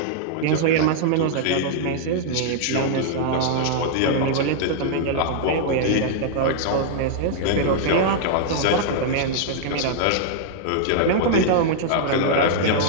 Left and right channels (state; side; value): different; both; correlation -0.01